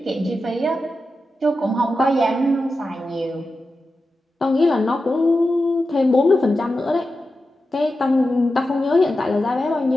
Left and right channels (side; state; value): both; normal; correlation 0.91